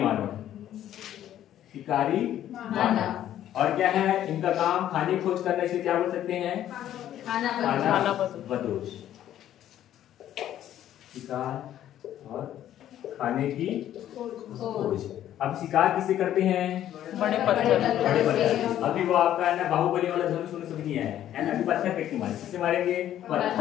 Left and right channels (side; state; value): right; quieter; 11.7 dB